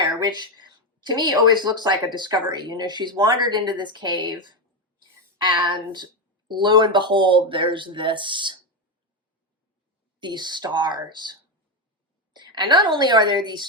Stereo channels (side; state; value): both; normal; correlation 0.09